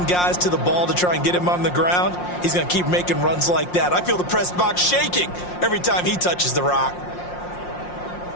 guys to the ball to try and get him on the ground, he's going to keep making runs like that. I feel the press box shaking every time he touches the rock.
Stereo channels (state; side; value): late; right; 5.6 ms